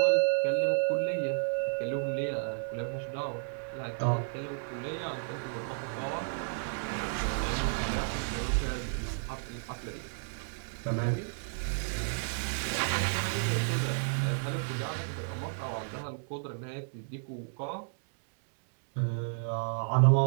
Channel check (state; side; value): silent; left; digital silence